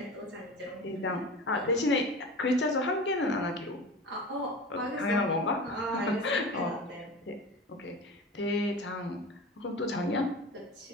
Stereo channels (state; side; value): normal; both; correlation 0.33